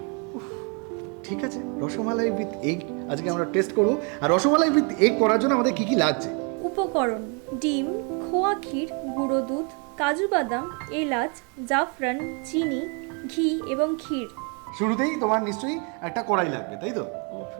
ঠিক আছে, রসমালাই উইথ এগ আজকে আমরা টেস্ট করব। আর রসমালাই উইথ এগ করার জন্য আমাদের কি কি লাগছে? উপকরণ: ডিম, খোয়া ক্ষীর, গুঁড়ো দুধ, কাজু বাদাম, এলাচ, জাফরান, চিনি, ঘি এবং ক্ষীর। শুরুতেই তোমার নিশ্চয়ই একটা কড়াই লাগবে, তাই তো?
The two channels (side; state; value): left; quieter; 35.5 dB